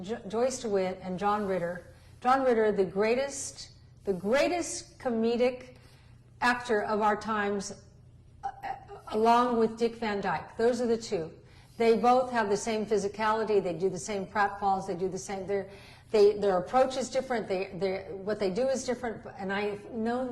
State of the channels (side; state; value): both; identical; correlation 1.00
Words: Joyce DeWitt and John Ritter. John Ritter, the greatest comedic actor of our times, along with Dick Van Dyke. Those are the two. They both have the same physicality. They do the same pratfalls. They do the same. Their approach is different. What they do is different. And I've known